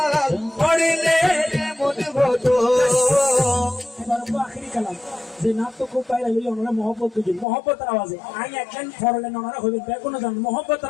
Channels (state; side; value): drops out; right; at 7.5 s